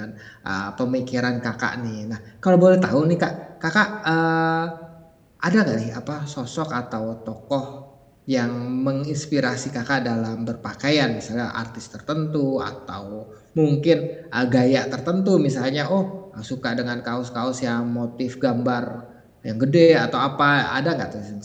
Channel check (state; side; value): identical; both; correlation 1.00